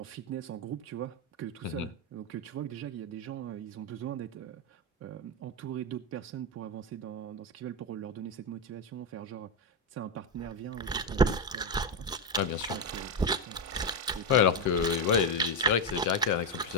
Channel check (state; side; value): normal; both; correlation 0.07